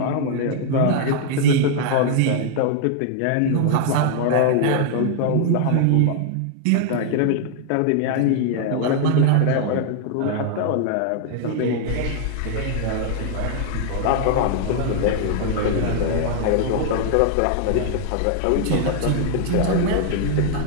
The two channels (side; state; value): both; different; correlation 0.00